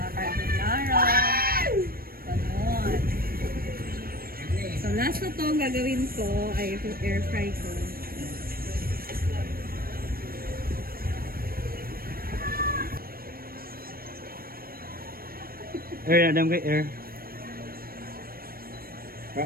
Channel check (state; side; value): late; left; 0.43 ms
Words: Ganon. So last na to ang gagawin ko ay air fry ko. Air, adam kay air.